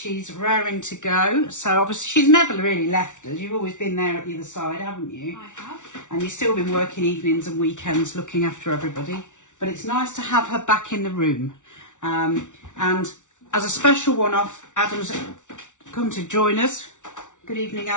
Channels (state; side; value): late; right; 0.86 ms